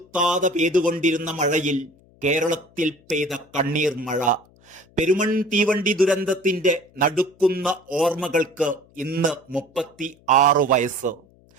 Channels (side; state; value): left; noise; hum, 30 dB below the sound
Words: പെയ്തുകൊണ്ടിരുന്ന മഴയിൽ കേരളത്തിൽ പെയ്ത കണ്ണീർ മഴ. പെരുമൺ തീവണ്ടി ദുരന്തത്തിന്റെ നടുക്കുന്ന ഓർമ്മകൾക്ക് ഇന്ന് 36 വയസ്സ്.